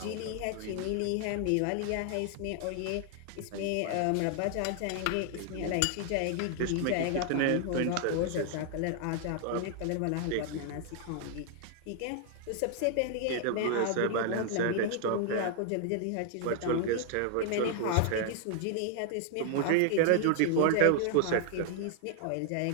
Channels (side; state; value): both; different; correlation 0.00